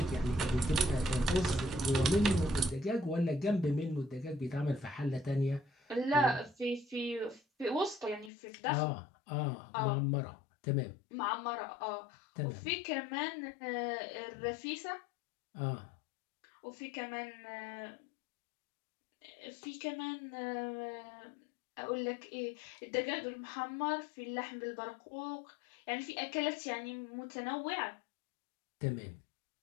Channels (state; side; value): drops out; right; at 8.3 s